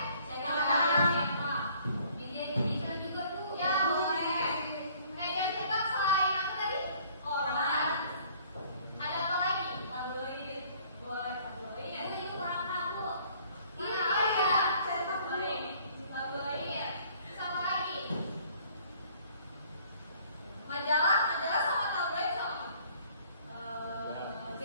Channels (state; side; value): inverted; both; correlation -0.57